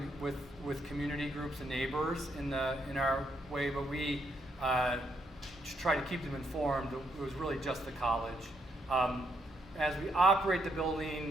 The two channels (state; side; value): normal; both; correlation 0.76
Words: with community groups and neighbors in our way, but we try to keep them informed. It was really just the college. As we operate the